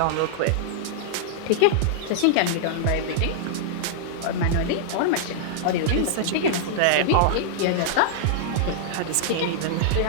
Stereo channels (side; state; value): both; different; correlation -0.01